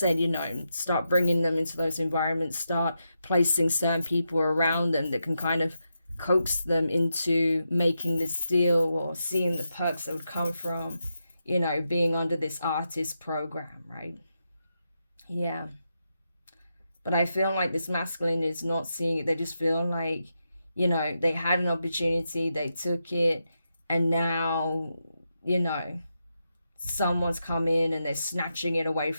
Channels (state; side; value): inverted; both; correlation -0.86